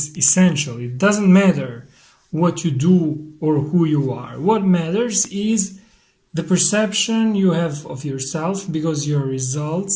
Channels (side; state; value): both; identical; correlation 1.00